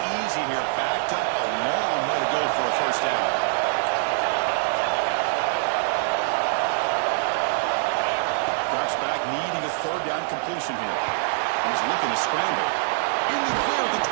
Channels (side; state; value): left; silent; 59 dB below the other